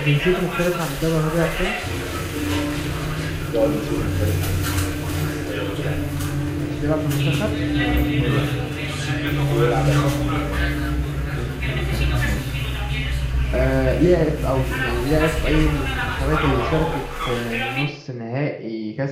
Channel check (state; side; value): identical; both; correlation 1.00